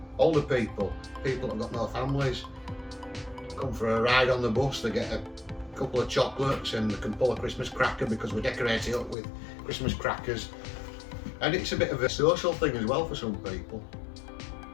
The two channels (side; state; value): right; drops out; at 9.2 s